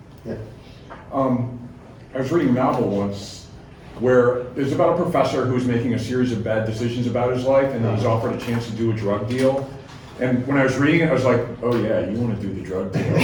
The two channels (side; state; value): both; identical; correlation 1.00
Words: Yeah. I was reading a novel once where it's about a professor who's making a series of bad decisions about his life, and he's offered a chance to do a drug deal. And when I was reading it, I was like, oh yeah, you want to do the drug deal.